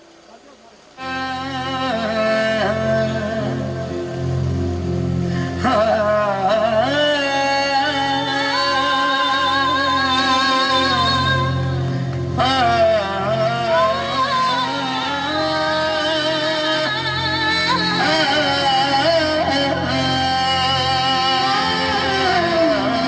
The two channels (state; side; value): identical; both; correlation 1.00